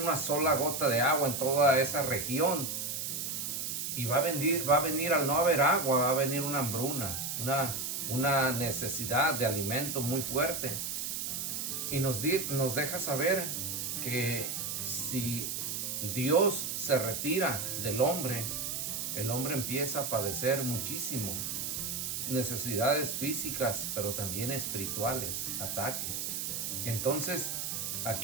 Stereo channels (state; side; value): noise; right; hiss, 3 dB below the sound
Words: sola gota de agua en toda esa región. Y va a venir al no haber agua, va a venir una hambruna, una necesidad de alimento muy fuerte. Y nos deja saber que si Dios se retira del hombre, el hombre empieza a padecer muchísimo. Necesidades físicas, pero también espirituales, ataques. Entonces,